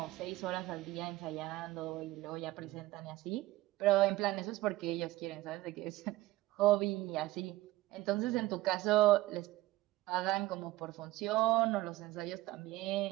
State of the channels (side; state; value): left; quieter; 17.6 dB